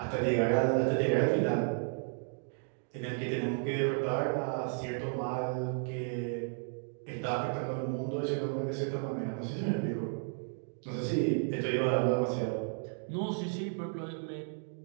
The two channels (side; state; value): left; silent; 56 dB below the other